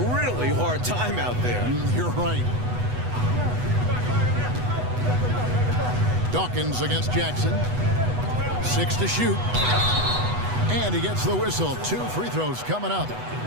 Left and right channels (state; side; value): late; left; 8.1 ms